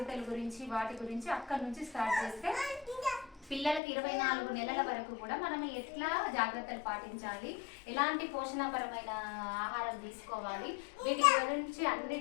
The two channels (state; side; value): drops out; right; at 3.8 s